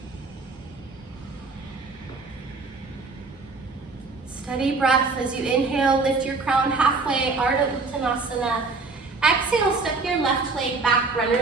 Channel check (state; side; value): quieter; left; 4.0 dB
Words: Steady breath as you inhale, lift your crown halfway, Ardha Uttanasana. Exhale, step your left leg back,